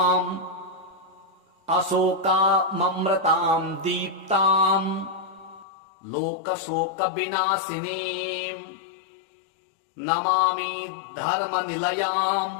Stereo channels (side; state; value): right; drops out; at 5.7 s